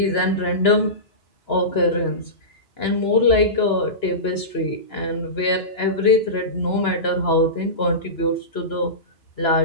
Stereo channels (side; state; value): right; late; 2.9 ms